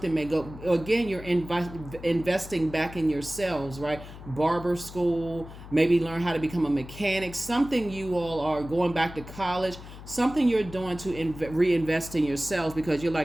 again, you're investing back in yourselves, right? Barber school, maybe learn how to become a mechanic, something you all are going back to college, something you're doing to reinvest in yourselves, because you're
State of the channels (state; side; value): noise; left; hum, 15 dB below the sound